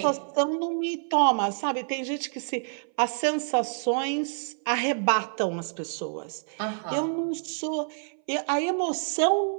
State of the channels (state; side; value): silent; left; 58 dB below the other